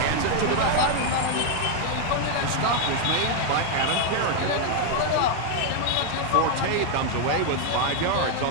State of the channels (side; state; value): both; different; correlation 0.00